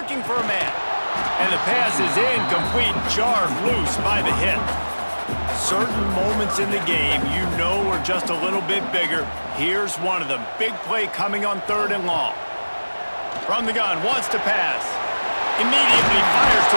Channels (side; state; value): both; inverted; correlation -1.00